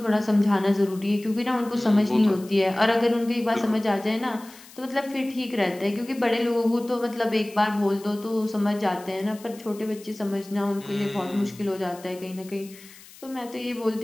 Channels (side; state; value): left; noise; hiss, 21 dB below the sound